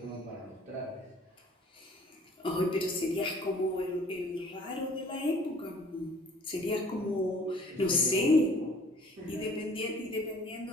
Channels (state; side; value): normal; both; correlation 0.53